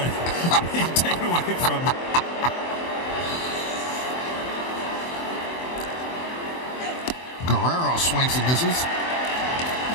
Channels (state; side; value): late; right; 24 ms